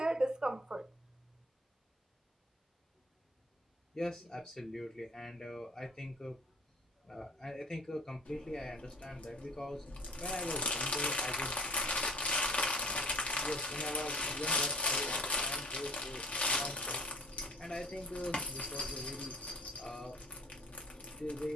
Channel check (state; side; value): normal; both; correlation 0.44